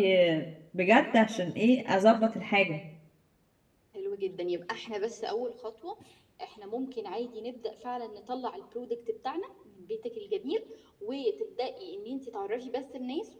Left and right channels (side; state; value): both; identical; correlation 1.00